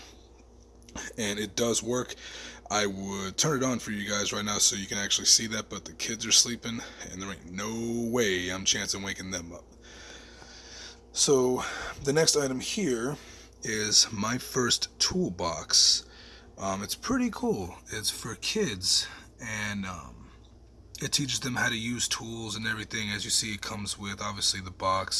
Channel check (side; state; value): both; identical; correlation 1.00